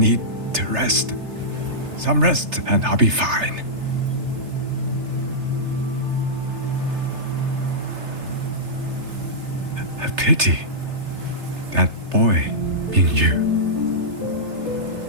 to rest. Some rest and I'll be fine. A pity. That boy, Mengzhou.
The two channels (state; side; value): late; left; 3.3 ms